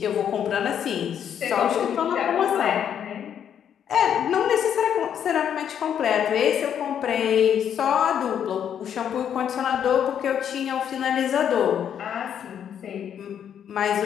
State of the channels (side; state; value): right; quieter; 8.9 dB